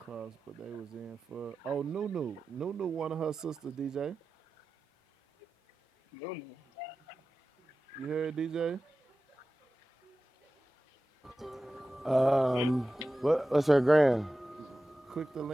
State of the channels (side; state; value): both; normal; correlation 0.95